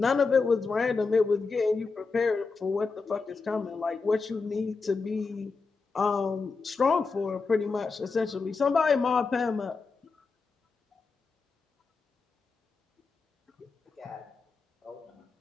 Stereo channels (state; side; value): quieter; right; 4.4 dB